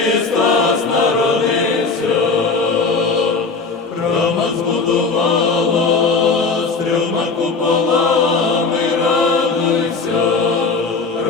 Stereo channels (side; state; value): right; quieter; 4.4 dB